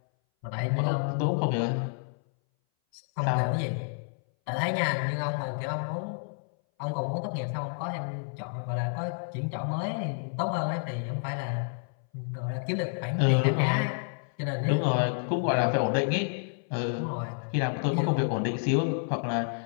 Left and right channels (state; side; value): silent; right; 58 dB below the other